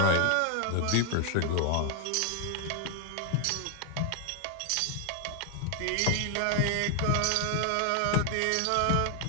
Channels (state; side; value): different; both; correlation 0.01